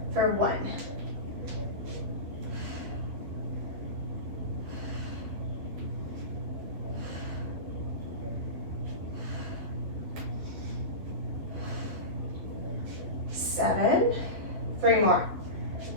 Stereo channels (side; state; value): left; late; 12 ms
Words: For 1. 7, 3 more,